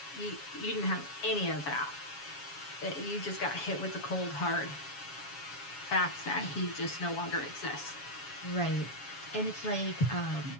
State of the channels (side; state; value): right; late; 7.2 ms